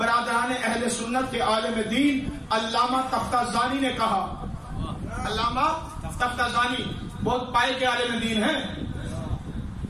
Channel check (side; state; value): both; identical; correlation 1.00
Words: اہل سنت کے عالم دین علامہ تفتازانی نے کہا۔ علامہ تفتازانی بہت پائے کے عالم دین ہیں،